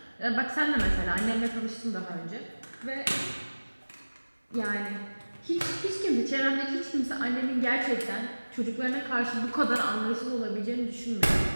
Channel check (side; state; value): both; inverted; correlation -1.00